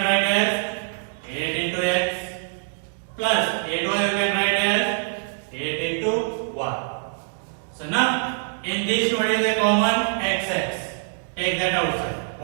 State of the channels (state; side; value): silent; left; digital silence